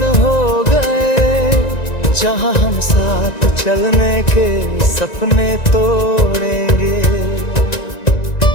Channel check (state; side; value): late; right; 1.9 ms